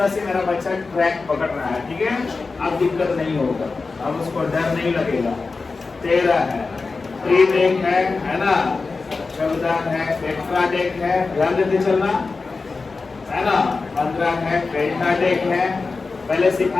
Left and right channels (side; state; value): right; quieter; 4.1 dB